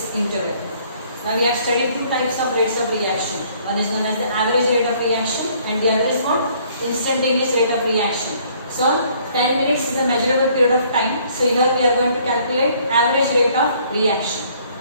interval. Now we have studied two types of rates of reaction. One is known as the average rate of reaction and the other is what? Instantaneous rate of reaction. So 10 minutes is a measurable period of time. So here we are going to calculate average rate of reaction.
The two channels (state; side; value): inverted; both; correlation -0.61